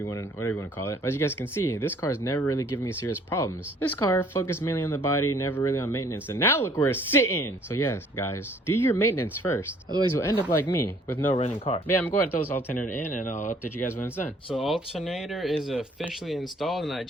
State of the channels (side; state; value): both; normal; correlation 0.58